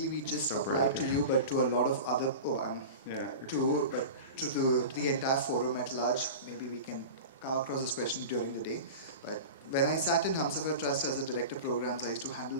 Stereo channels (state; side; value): inverted; both; correlation -0.31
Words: we just apply to you, but to a lot of other, to the entire forum at large. Maybe we can come across this question during the day. But when I sat in Humsafar Trust as a director of programs, I used to